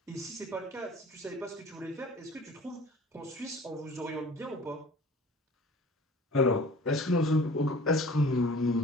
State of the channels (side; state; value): both; normal; correlation 0.45